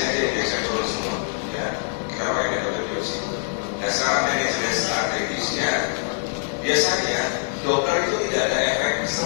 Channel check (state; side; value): silent; right; digital silence